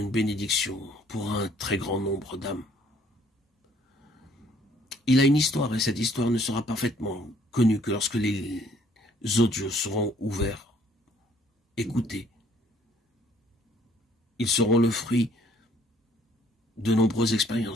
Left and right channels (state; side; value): normal; both; correlation 0.62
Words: bénédiction pour un très grand nombre d'âmes. Il a une histoire et cette histoire ne sera parfaitement connue que lorsque les audios seront ouverts, écoutés. Ils seront le fruit de nombreuses